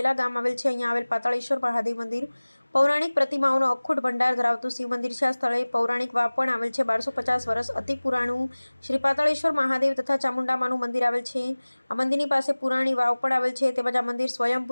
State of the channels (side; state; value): both; inverted; correlation -1.00